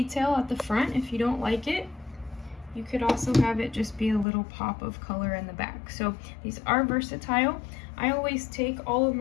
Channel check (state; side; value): drops out; right; at 4.2 s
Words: at the front if you don't like it. You could also have it just be a little pop of color in the back. So these are versatile. I always take all of